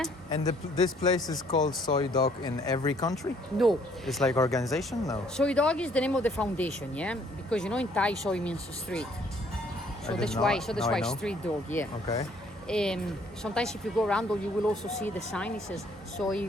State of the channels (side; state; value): both; normal; correlation 0.63